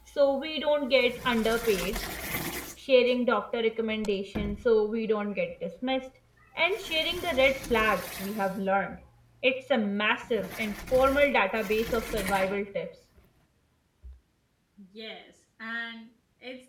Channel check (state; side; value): identical; both; correlation 1.00